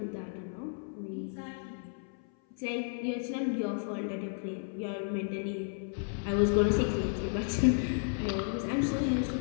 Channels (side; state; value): right; silent; 56 dB below the other